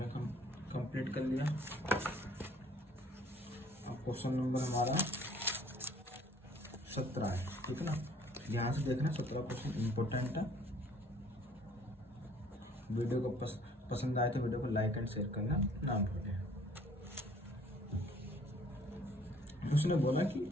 कंप्लीट कर लिया। अब क्वेश्चन नंबर हमारा 17 है, ठीक है ना। ध्यान से देखना 17 क्वेश्चन इम्पोर्टेंट है। वीडियो को पसंद आए तो वीडियो को लाइक एंड शेयर करना ना भूलें। उसने बोला कि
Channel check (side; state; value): both; normal; correlation 0.57